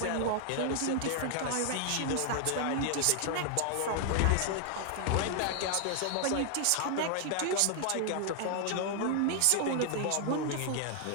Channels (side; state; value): both; different; correlation 0.00